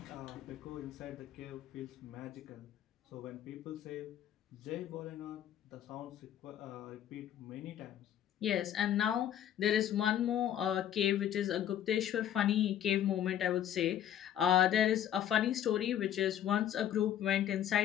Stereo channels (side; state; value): right; quieter; 10.7 dB